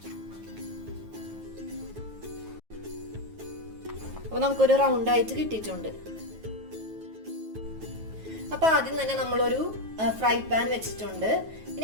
അപ്പൊ നമുക്കൊരു റൗണ്ട് ആയിട്ട് കിട്ടിയിട്ടുണ്ട്. അപ്പൊ ആദ്യം തന്നെ നമ്മളൊരു ഫ്രൈ പാൻ വെച്ചിട്ടുണ്ട്. ഇനി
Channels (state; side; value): late; left; 9.3 ms